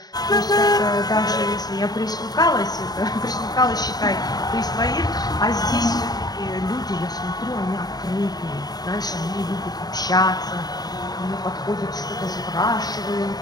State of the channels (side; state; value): right; late; 0.19 ms